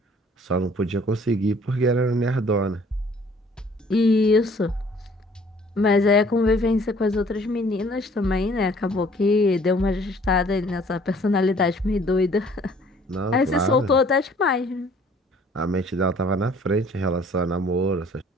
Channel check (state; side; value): normal; both; correlation 0.56